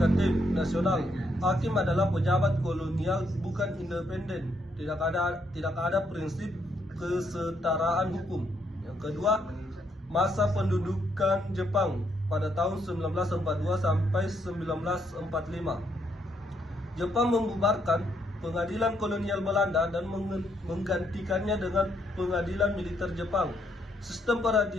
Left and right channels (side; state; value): both; normal; correlation 0.74